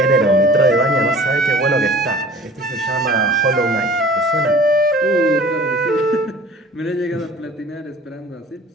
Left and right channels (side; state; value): both; normal; correlation 0.46